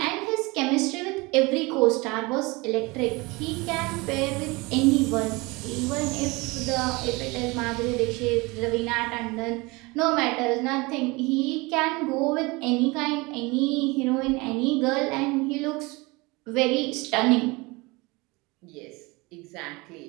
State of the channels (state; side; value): quieter; left; 24.7 dB